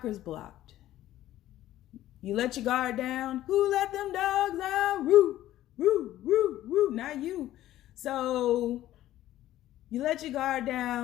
blocked. You let your guard down. Who let them dogs out? Woo, woo, woo, woo. Not you. So you let your guard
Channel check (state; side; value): quieter; right; 13.9 dB